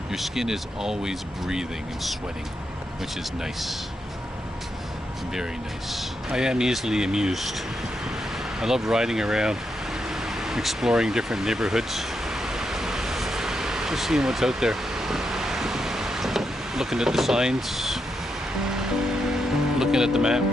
Your skin is always breathing and sweating, which is nice. Very nice. I am easily amused. I love riding around, exploring different neighborhoods, just seeing what's out there, looking at the signs, looking at the map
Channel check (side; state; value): both; normal; correlation 0.83